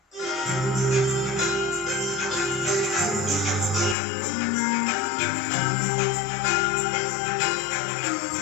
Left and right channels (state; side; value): drops out; right; at 4.0 s